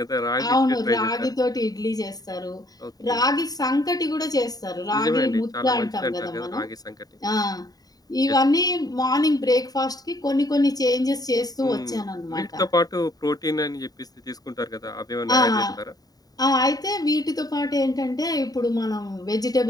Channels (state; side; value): late; right; 0.18 ms